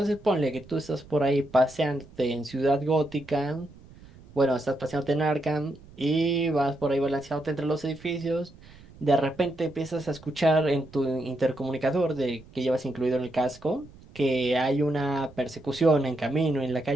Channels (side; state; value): right; noise; rumble, 22 dB below the sound